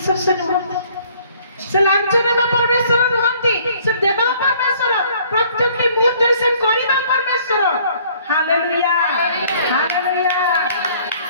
ସେ ନୁହଁ, ସେ ଲାଞ୍ଚ ନେବା ପରମେଶ୍ୱର ନୁହନ୍ତି, ସେ ଦେବା ପରମେଶ୍ୱର, ପ୍ରତ୍ୟେକ ମୁହୂର୍ତ୍ତରେ ସେ କରିବା ପରମେଶ୍ୱର। Hallelujah, hallelujah.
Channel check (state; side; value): inverted; both; correlation -0.58